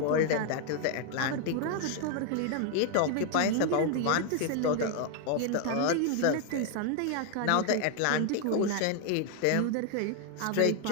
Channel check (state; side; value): different; both; correlation 0.00